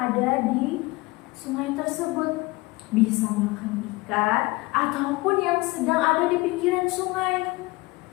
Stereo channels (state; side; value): quieter; right; 22.6 dB